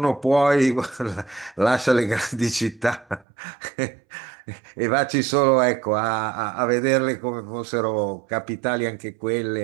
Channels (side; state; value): left; drops out; at 3.2 s